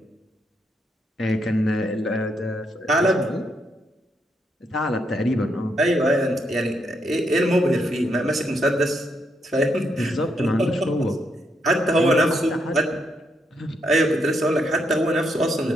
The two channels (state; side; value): normal; both; correlation 0.78